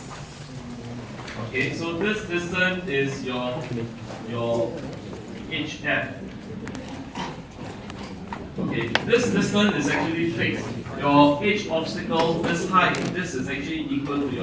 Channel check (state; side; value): identical; both; correlation 1.00